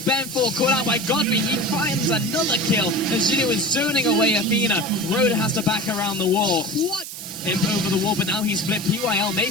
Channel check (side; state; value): right; noise; hiss, 10 dB below the sound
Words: Banfor caught out by Godfrey. He finds another kill as Jinnu is zoning away Athena. Road has to back around the wall. What? Imp over the wall, but now he's split. PYL